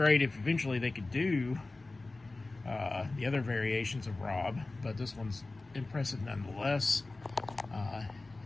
if eventually they could do the other variations of Rob, but this one's impressive nonetheless.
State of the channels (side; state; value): right; quieter; 3.2 dB